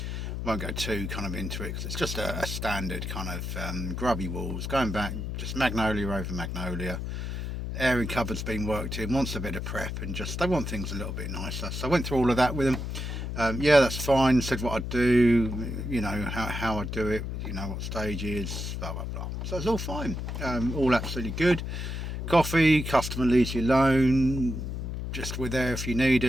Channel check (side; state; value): left; noise; hum, 4 dB below the sound